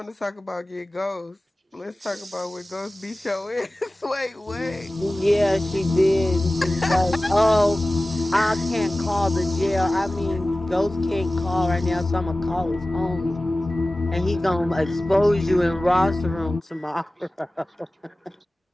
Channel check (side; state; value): both; normal; correlation 0.97